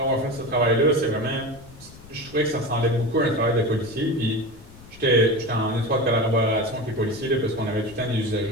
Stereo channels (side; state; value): left; noise; rumble, 20 dB below the sound